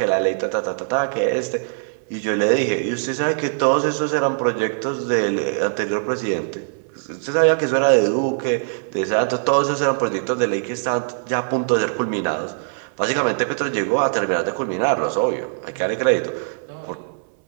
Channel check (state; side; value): silent; left; 62 dB below the other